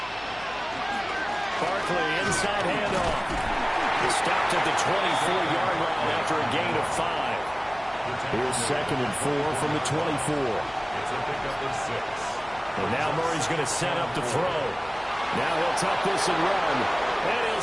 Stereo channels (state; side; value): noise; left; hum, 23 dB below the sound